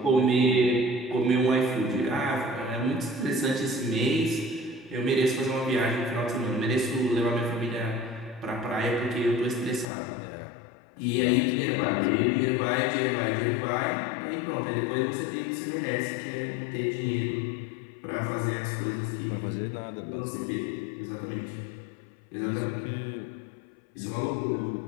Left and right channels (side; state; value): right; drops out; at 9.9 s